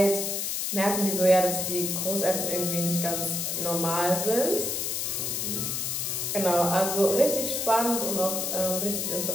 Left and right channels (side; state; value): left; noise; hiss, 1 dB below the sound